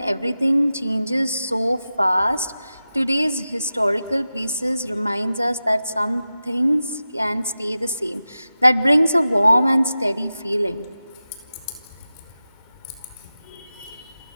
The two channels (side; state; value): both; inverted; correlation -0.94